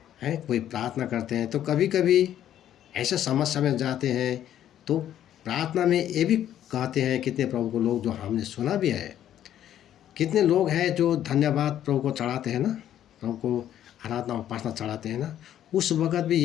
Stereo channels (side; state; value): right; quieter; 11.2 dB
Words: कोई प्रार्थना करते हैं, तो कभी कभी ऐसा समस्या में जाते हैं तो प्रार्थना में ये भी कहते हैं, कितने प्रभु को लोग जो हमने सुना भी है, कितने लोग हैं जो धन्यवाद प्रभु को चढ़ाते हैं ना, प्रभु को आराधना उपासना चढ़ाते हैं ना, उस वक़्त भी